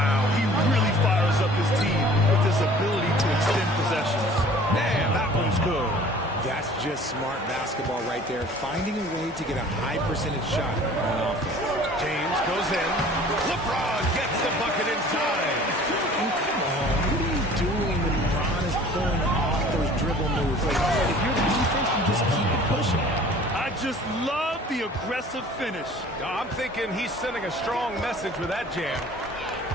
he really fires up his team with his ability to extend possessions. Man, that one's good. That's just smart basketball right there, finding a way to get a high percentage shot on offense. James goes in. LeBron gets the bucket inside. And come on, what are you doing when LeBron is pulling off those dribble moves? Like, if you're the defense, you just keep it pushing. I just love the aggressive finish. I'm thinking he's sending a strong message with that jam.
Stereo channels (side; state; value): both; normal; correlation 0.49